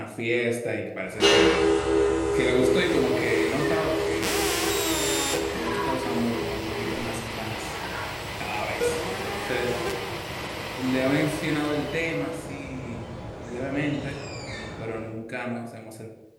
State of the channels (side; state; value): both; identical; correlation 1.00